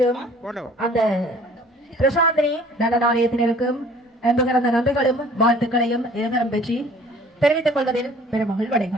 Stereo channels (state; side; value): normal; both; correlation 0.52